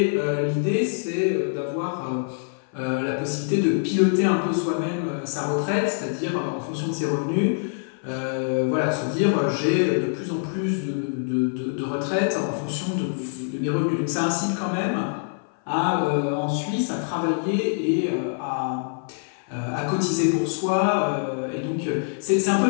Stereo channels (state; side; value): silent; right; 56 dB below the other